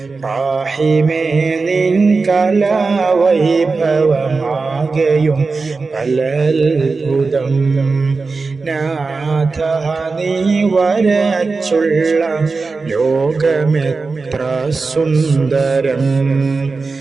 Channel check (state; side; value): quieter; left; 4.2 dB